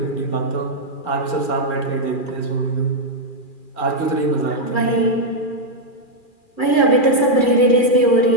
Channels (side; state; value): right; late; 2.4 ms